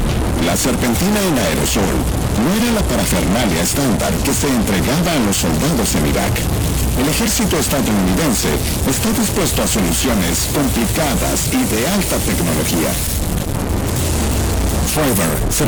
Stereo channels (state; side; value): identical; both; correlation 1.00